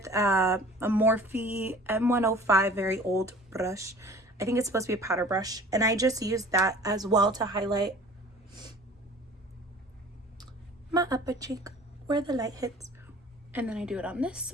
a Morphe M105, very old brush. I think it's supposed to be a powder brush. And I just use that as well to highlight my upper cheek where the light hits. And then I do it on this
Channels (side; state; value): both; normal; correlation 0.46